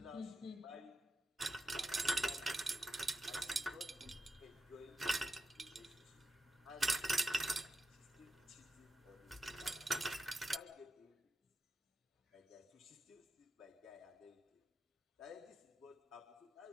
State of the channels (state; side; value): normal; both; correlation 0.88